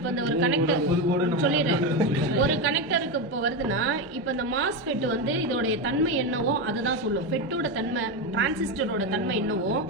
இந்த ஒரு கனெக்டர் சொல்லிடுறேன். ஒரு கனெக்டருக்கு இப்போ வருதுன்னா இப்போ இந்த மாஸ்ஃபெட் வந்து இதோடைய தன்மை என்னவோ அதுதான் சொல்லும். ஃபெட்டோட தன்மை டிரான்சிஸ்டரோட தன்மை என்னவோ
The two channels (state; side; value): normal; both; correlation 0.13